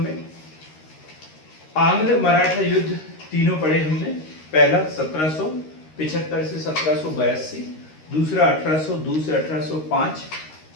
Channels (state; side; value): late; right; 13 ms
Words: आंग्ल मराठा युद्ध तीनों पढ़े हमने। पहला 1775 से 1782, दूसरा 1802 से 1805